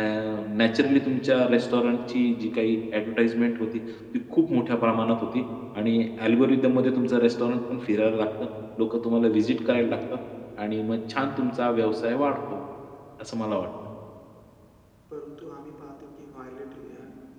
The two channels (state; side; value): identical; both; correlation 1.00